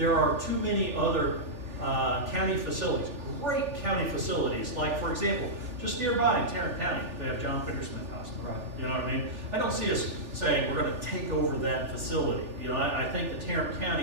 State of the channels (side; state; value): left; late; 3.4 ms